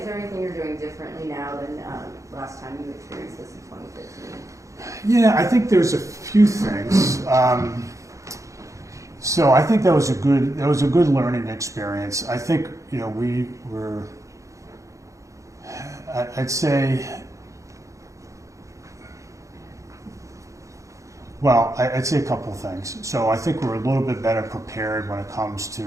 there anything you're doing differently now than last time you experienced this in 2015? Yeah, I think there's a few things. So I think that was a good learning experience. I think we were. I'd say. Well, I'd say a couple of things. So I think we're a little bit better prepared when it comes to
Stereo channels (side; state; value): left; late; 0.15 ms